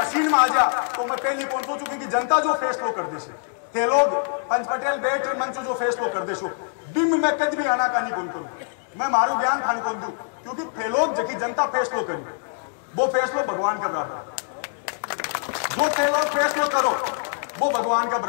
में आ जा, तो मैं पहले कौन सोचू क्योंकि जनता जो फैसलो कर दे थे लोग पंच पटेल बेट मंच जो फैसलो कर दे बिम में कद भी आना का नहीं कौन करूं, मैं मारू ज्ञान खान कौन दू क्योंकि थे लोग जबकि जनता फैसलो करी वो फैसलो भगवान का बराबर, जो थे लोग फैसलो करो वो भगवान का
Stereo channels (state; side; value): silent; right; digital silence